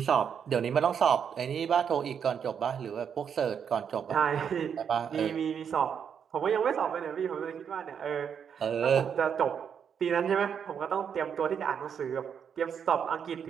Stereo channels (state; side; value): quieter; left; 7.6 dB